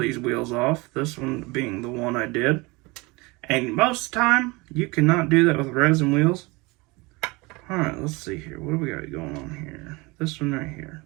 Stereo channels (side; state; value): left; quieter; 25.0 dB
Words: wheels off. This one being the one I did. And most of the time, you cannot do that with resin wheels. Alright, let's see here. What do we got going on here? This one right here.